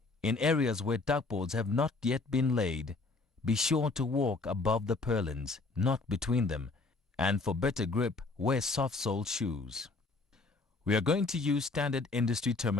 In areas where duckboards have not yet been laid, be sure to walk above the purlins, not between them, and for better grip, wear soft-soled shoes. We are going to use standard industry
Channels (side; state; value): right; quieter; 3.7 dB